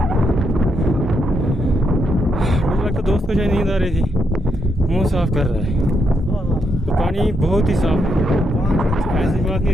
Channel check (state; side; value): normal; both; correlation 0.79